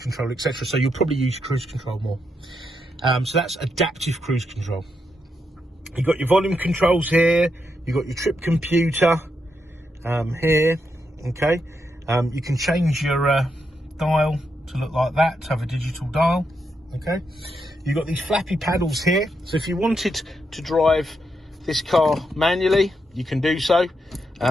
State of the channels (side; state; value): both; normal; correlation 0.82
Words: etc. So you'll probably use cruise control more. So that's adaptive cruise control. You've got your volume controls here. You've got your trip computer here. Okay. You can change your dial to look like that, to have a digital dial. Okay. You've got these flappy paddles here. So if you wanted to drive this car manually, you can do so.